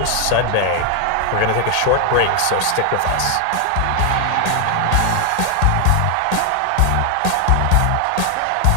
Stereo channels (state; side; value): different; both; correlation 0.00